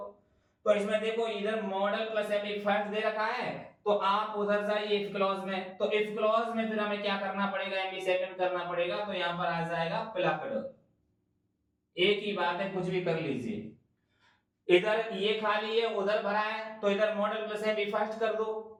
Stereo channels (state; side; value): identical; both; correlation 1.00